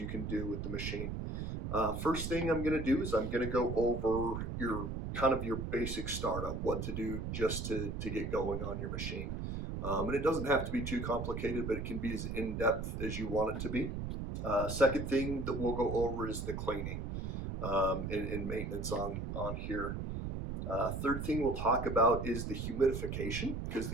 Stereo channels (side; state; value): right; noise; rumble, 4 dB below the sound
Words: can do with the machine. First thing I'm going to do is I'm going to go over your basic startup, what to do just to get going on your machine. And it doesn't have to be too complicated, but it can be as in-depth as you want it to be. Second thing that we'll go over is the cleaning and maintenance on here. Third thing we'll talk about is the humidification, because